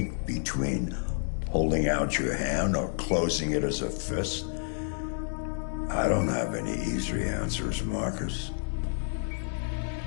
between holding out your hand or closing it as a fist. I don't have any easy answers, Marcus.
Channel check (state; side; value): silent; right; 58 dB below the other